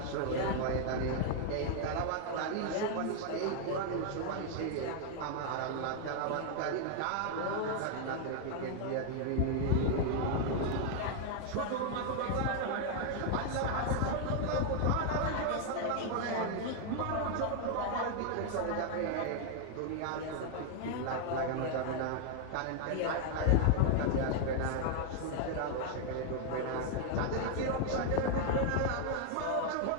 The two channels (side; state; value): both; different; correlation 0.00